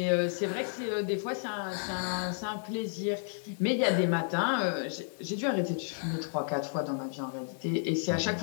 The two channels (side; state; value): right; silent; digital silence